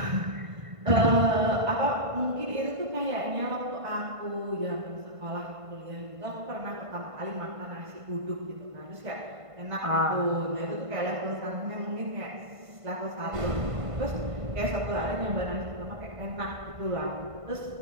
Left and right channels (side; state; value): left; late; 1.5 ms